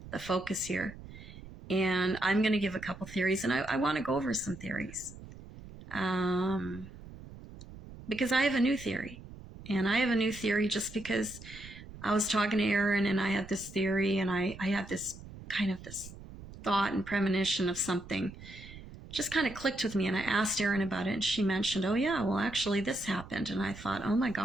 the focus here. And I'm going to give a couple theories, and I want to go over some theories. Because I have a new theory. And I have a new theory just because I was talking to Aaron and I had this theory, and I had this kind of this thought and premonition of something just kind of clicked with me, and I asked Aaron about it, and she mentioned, oh yeah, well actually this happened. And I thought, oh my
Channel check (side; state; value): right; noise; rumble, 15 dB below the sound